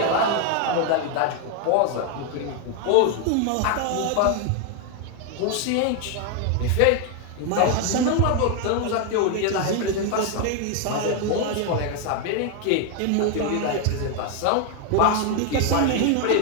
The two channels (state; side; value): different; both; correlation 0.01